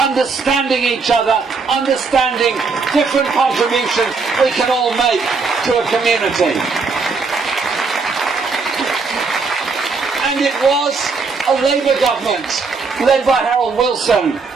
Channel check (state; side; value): quieter; left; 4.5 dB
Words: each other, understanding different contributions we can all make to a community. And it was a Labour government led by Harold Wilson